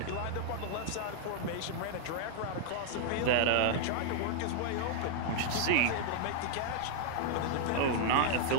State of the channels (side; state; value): both; different; correlation -0.01